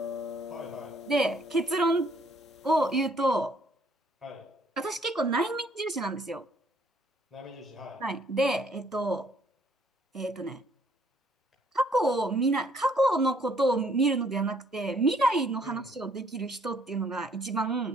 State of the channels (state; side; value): normal; both; correlation 0.64